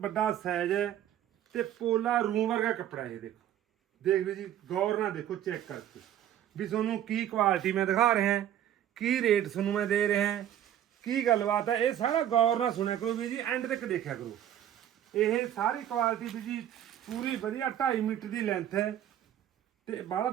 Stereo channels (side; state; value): left; quieter; 11.1 dB